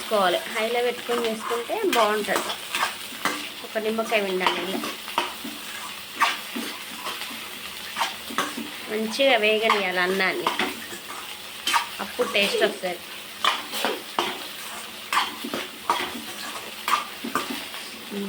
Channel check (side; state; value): both; identical; correlation 1.00